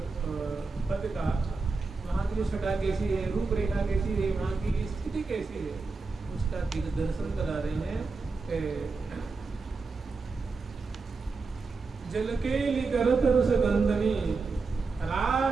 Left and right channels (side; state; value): left; quieter; 4.2 dB